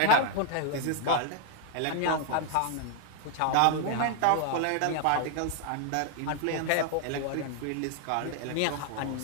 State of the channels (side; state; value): both; different; correlation 0.00